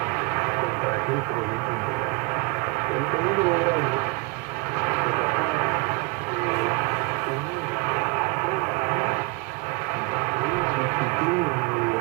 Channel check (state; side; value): quieter; left; 26.9 dB